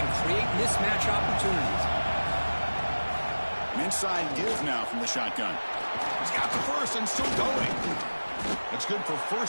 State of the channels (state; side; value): inverted; both; correlation -1.00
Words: create mismatch opportunities. An inside give now from the shotgun. He's got the first and still going. That's good for